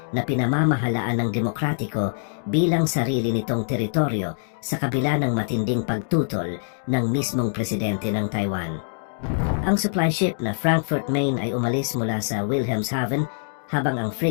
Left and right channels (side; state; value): right; silent; digital silence